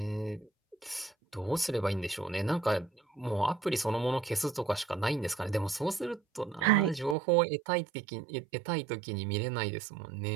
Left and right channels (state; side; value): drops out; left; at 7.2 s